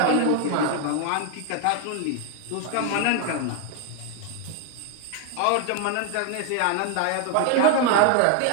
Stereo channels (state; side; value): different; both; correlation 0.01